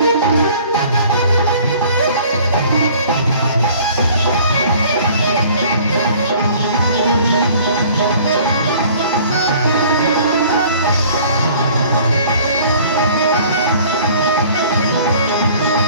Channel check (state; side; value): inverted; both; correlation -0.52